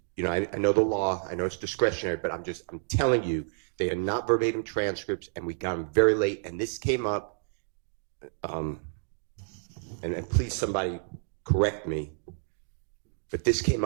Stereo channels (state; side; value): silent; left; digital silence